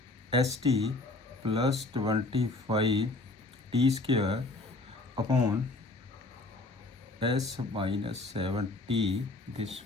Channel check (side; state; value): right; quieter; 3.2 dB